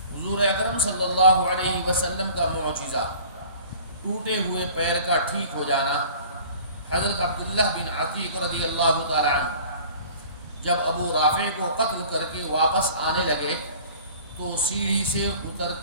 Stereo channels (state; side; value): inverted; both; correlation -0.46